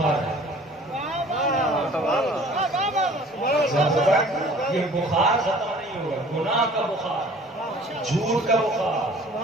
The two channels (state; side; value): normal; both; correlation 0.49